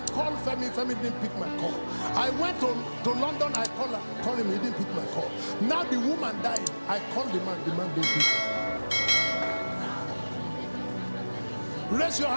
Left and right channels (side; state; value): both; inverted; correlation -1.00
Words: called Femi. Femi didn't pick my call. I went to London, I called him, he didn't pick my call. Now the woman died, I called the man didn't pick. Raise your